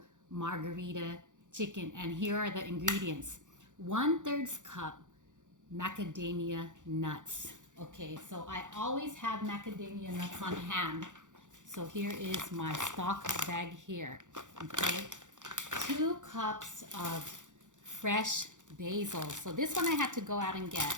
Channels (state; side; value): late; left; 0.86 ms